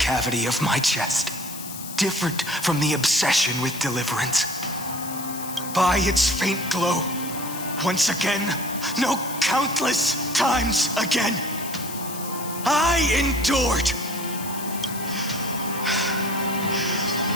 of my chest, different from the obsession with deliverance. By its faint glow, once again, no, countless times again, I endured.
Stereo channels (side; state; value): left; noise; hiss, 11 dB below the sound